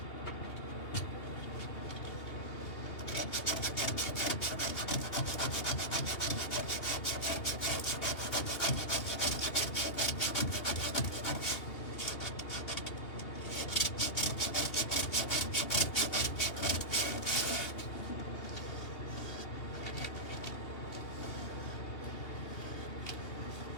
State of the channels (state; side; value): late; right; 2.8 ms